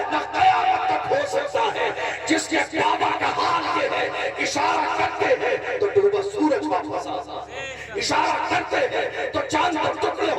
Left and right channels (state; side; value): identical; both; correlation 1.00